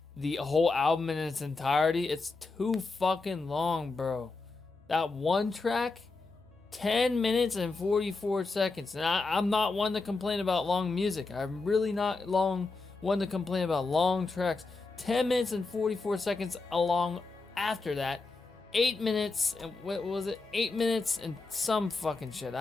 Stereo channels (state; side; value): quieter; right; 3.8 dB